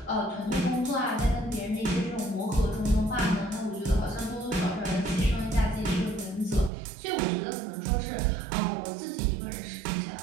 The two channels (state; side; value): drops out; left; at 6.7 s